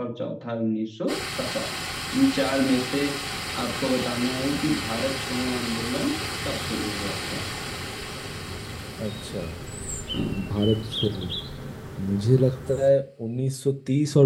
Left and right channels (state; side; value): identical; both; correlation 1.00